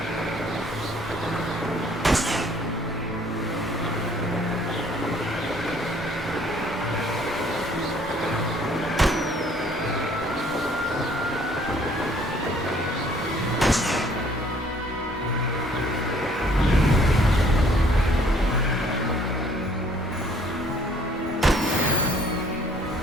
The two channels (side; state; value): both; normal; correlation 0.59